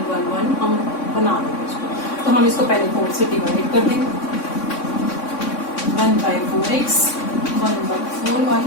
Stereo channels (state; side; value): late; right; 3.6 ms